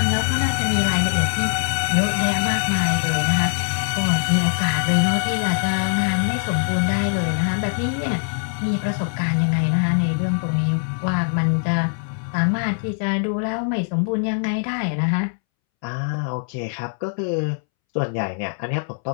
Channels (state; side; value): silent; right; 64 dB below the other